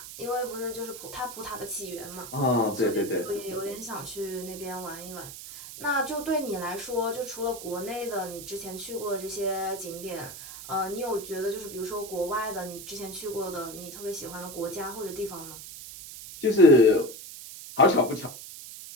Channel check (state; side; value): noise; right; hiss, 12 dB below the sound